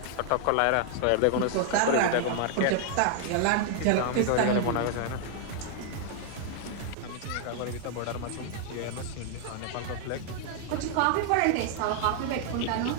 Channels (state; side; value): different; both; correlation 0.00